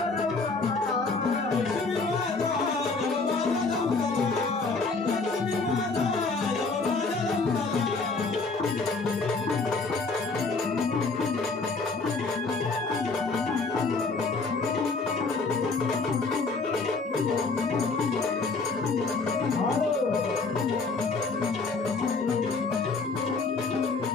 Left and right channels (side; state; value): right; quieter; 4.0 dB